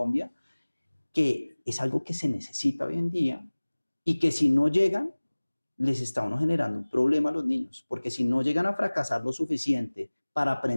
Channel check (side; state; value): both; inverted; correlation -1.00